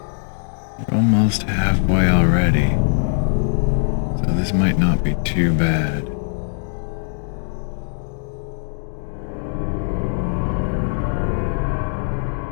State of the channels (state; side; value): silent; right; digital silence